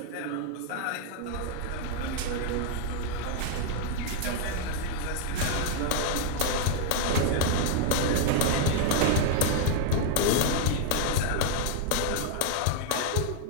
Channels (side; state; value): both; different; correlation 0.00